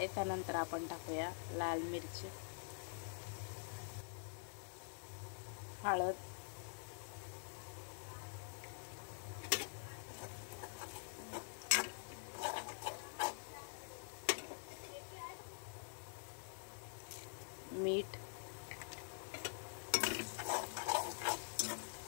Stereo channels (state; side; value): silent; right; digital silence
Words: त्यानंतर आपण टाकूया लाल मिरची, हळद, मीठ,